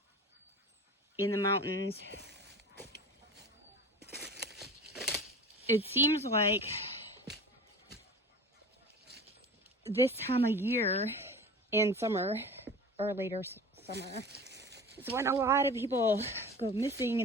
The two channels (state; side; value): normal; both; correlation 0.36